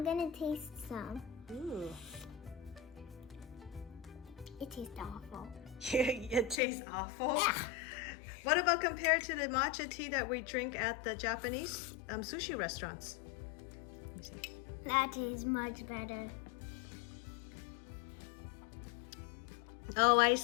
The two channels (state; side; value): drops out; right; at 6.6 s